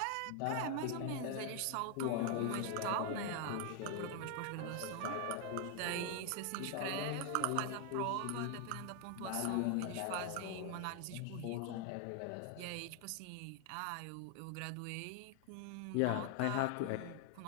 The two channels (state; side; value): different; both; correlation 0.00